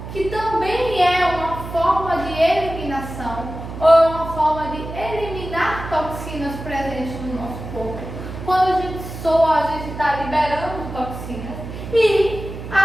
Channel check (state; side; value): noise; right; hum, 10 dB below the sound